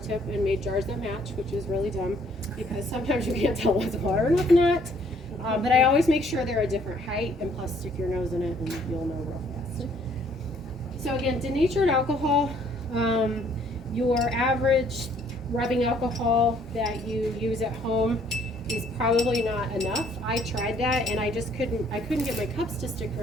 and made jars that match, which is really dumb because sometimes you can't tell what's water and what's not. But I always make sure they're a different height, and plus stick your nose in it and you'll know real fast. So again, denatured alcohol, your average rubbing alcohol that you use at home is probably not enough. I tried that and I couldn't get my cups to stick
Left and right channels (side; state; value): both; normal; correlation 0.63